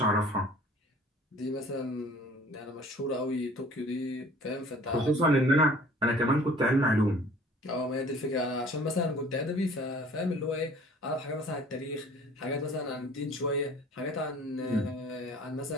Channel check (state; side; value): normal; both; correlation 0.50